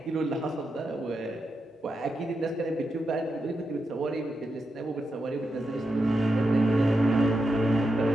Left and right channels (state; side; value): normal; both; correlation 0.86